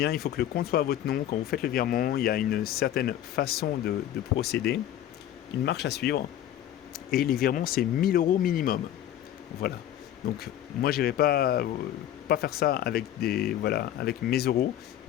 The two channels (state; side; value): quieter; right; 11.7 dB